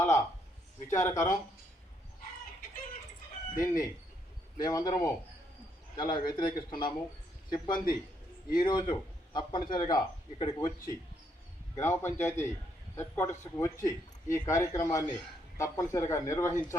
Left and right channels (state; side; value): normal; both; correlation 0.74